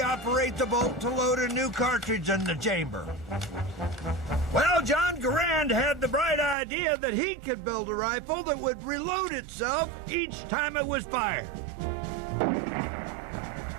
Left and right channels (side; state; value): left; drops out; at 6.6 s